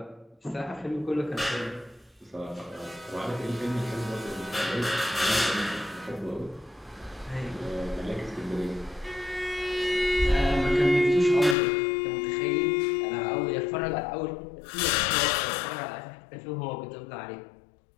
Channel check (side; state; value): right; drops out; at 11.6 s